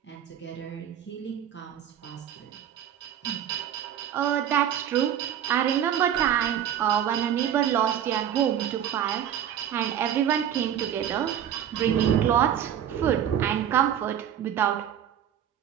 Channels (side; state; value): left; quieter; 9.8 dB